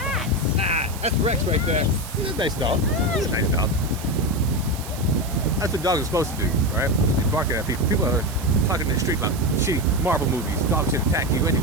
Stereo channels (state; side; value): noise; right; hiss, 14 dB below the sound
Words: That's Rex right there. He's a nice dog. He's a nice dog. That's what dogs are supposed to do, right? Just be barking at people. People are talking in the street about shitty Marvel movies. Dogs should attack you